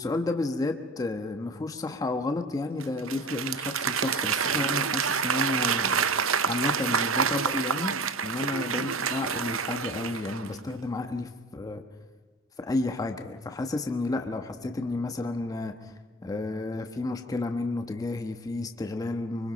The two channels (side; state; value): both; normal; correlation 0.39